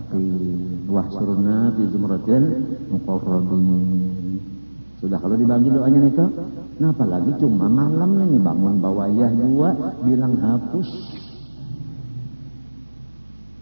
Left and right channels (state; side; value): inverted; both; correlation -1.00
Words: wahsyurna fi zumratil muqarrabin. Sudah kalau dibagi doanya itu, nah apalagi cuma malam ini bangun bawayah dua bilang hapus.